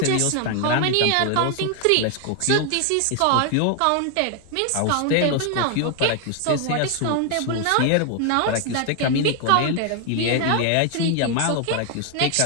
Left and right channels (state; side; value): different; both; correlation 0.00